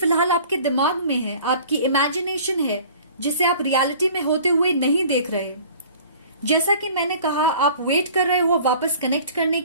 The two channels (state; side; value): inverted; both; correlation -0.48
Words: आपके दिमाग में है, आपकी इमेजिनेशन है, जिसे आप रियलिटी में होते हुए नहीं देख रहे। जैसा कि मैंने कहा, आप वेट कर रहे हो वापस कनेक्ट करने